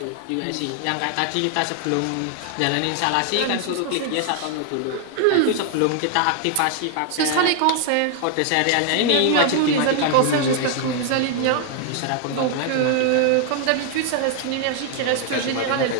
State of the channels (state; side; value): different; both; correlation 0.00